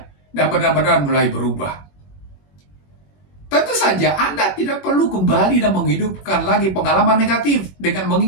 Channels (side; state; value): right; late; 21 ms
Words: dan benar-benar mulai berubah. Tentu saja Anda tidak perlu kembali dan menghidupkan lagi pengalaman negatif dengan